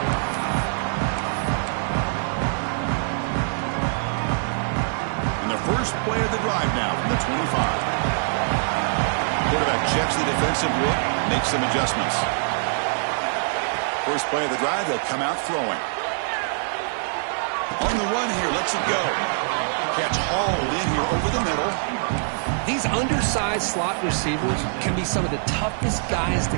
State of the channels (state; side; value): silent; left; 63 dB below the other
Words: And the first play of the drive now from the 25. Quarterback checks the defensive look, makes some adjustments. First play of the drive, they'll come out throwing. On the run here, lets it go. Catch hauled in here over the middle. These undersized slot receivers can be some of the toughest guys to